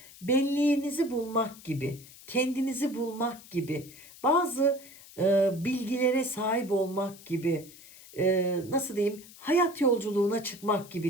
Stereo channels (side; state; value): left; noise; hiss, 20 dB below the sound